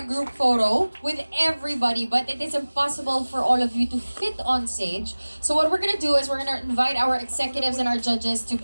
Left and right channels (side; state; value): both; inverted; correlation -1.00